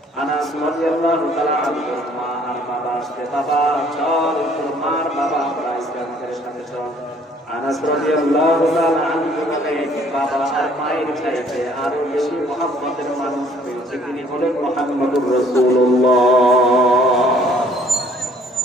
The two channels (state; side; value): normal; both; correlation 0.59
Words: আনাস রাদিয়াল্লাহু তাআলা আনহু মা আর বাবা আসতে, বাবা চল তোর মার বাবা আমরা ইসলামের সাথে চল। আনাস রাদিয়াল্লাহু তাআলা আনহু বলেন, বাবা আর মায়ের চাইতে আরো বেশি মহব্বতের মানুষ পেয়েছে, তিনি হলেন মুহাম্মদুর রাসূলুল্লাহ।